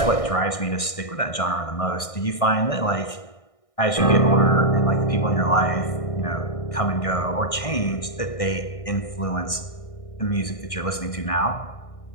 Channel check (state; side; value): late; right; 1.6 ms